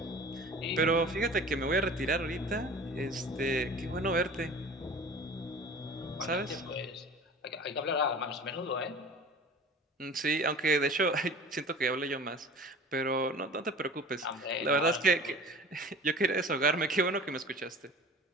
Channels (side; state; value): both; normal; correlation 0.41